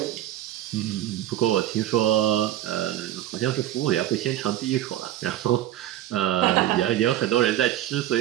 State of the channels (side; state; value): left; quieter; 13.0 dB